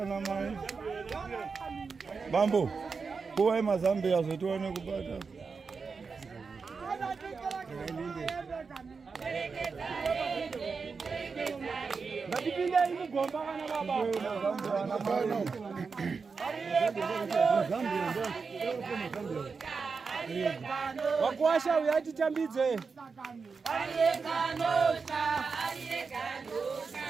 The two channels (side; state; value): left; quieter; 5.0 dB